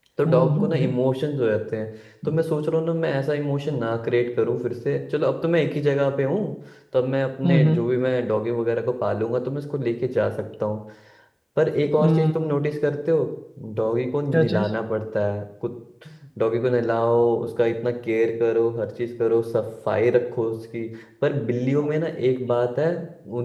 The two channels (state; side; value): identical; both; correlation 1.00